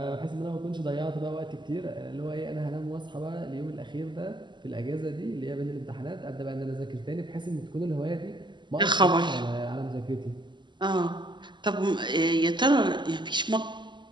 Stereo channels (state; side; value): late; left; 0.22 ms